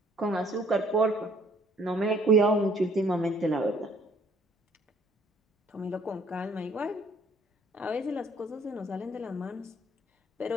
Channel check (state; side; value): normal; both; correlation 0.61